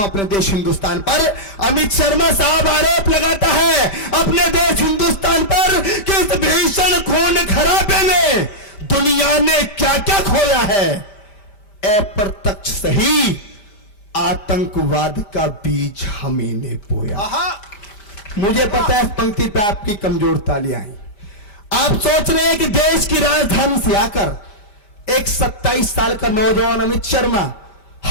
हूं अपने देश हिंदुस्तान पर। अमित शर्मा साहब आरोप लगाता है अपने देश हिंदुस्तान पर कि इस भीषण खून खराबे में दुनिया ने क्या क्या खोया है। अप्रत्यक्ष सही आतंकवाद का बीज हमें ने बोया। मुझे पता है इस पंक्ति पे आपकी कमजोर तालियां आई। आप सोच रहे हैं कि देश की राजधानी से आकर एक 27 साल का नौजवान अमित शर्मा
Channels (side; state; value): right; late; 5.0 ms